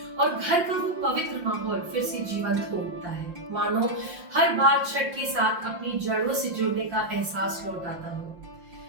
और घर का वो पवित्र माहौल फिर से जीवंत हो उठता है, मानो हर बार छठ के साथ अपनी जड़ों से जुड़ने का एहसास लौट आता हो।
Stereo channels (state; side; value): late; left; 5.7 ms